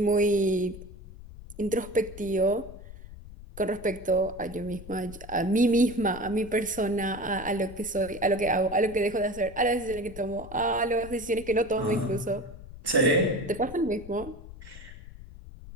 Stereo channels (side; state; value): left; noise; rumble, 15 dB below the sound